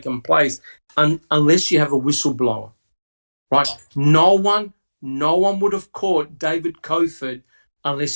place unless you have a whistleblower, right? No one would have caught David Cofford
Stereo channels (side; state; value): both; inverted; correlation -1.00